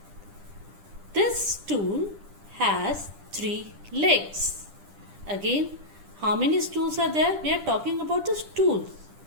this stool has 3 legs. Again, how many stools are there? We are talking about the stools,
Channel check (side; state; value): left; late; 10 ms